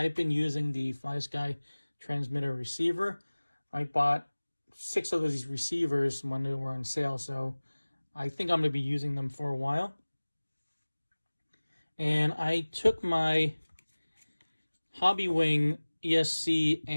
been using the FlySky transmitter receiver. I bought 6 of these receivers when they were on sale, so I think I'm going to be using them for a while. And I took my Hobbywing ESC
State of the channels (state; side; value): inverted; both; correlation -1.00